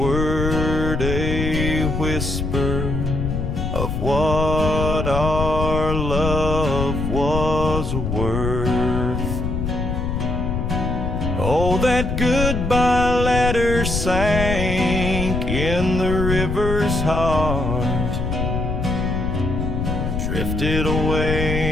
a whisper of what our love was worth. Oh, that goodbye letter sank in the river's heart, drifted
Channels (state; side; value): noise; left; rumble, 2 dB below the sound